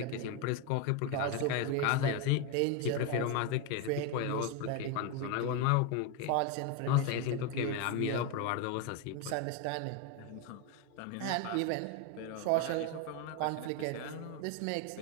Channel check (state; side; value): different; both; correlation 0.02